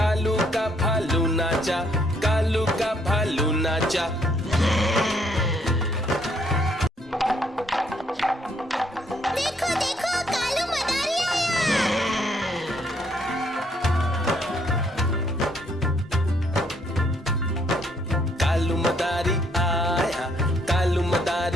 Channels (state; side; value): normal; both; correlation 0.69